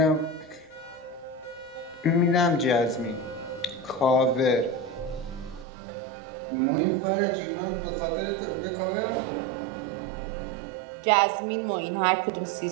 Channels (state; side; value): drops out; left; at 5.7 s